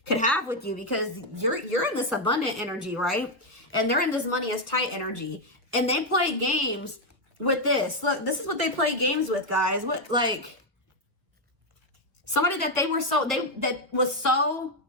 could have with you, because you're in this abundant energy, right? And they're in this money is tight energy, and they play games with this. Look, this is what they play games with, guys. What, like, somebody that was so,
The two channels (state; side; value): normal; both; correlation 0.03